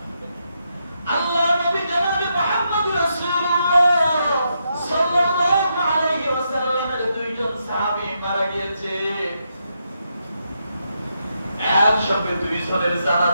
আল্লাহ নবী জনাবে মুহাম্মদ রাসূলুল্লাহ সাল্লাল্লাহু আলাইহি ওয়াসাল্লামের দুইজন সাহাবী মারা গিয়েছে, একসাথে দুইজনের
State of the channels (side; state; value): both; inverted; correlation -0.81